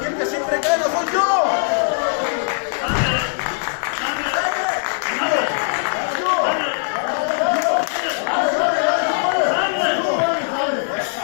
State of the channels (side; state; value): right; silent; digital silence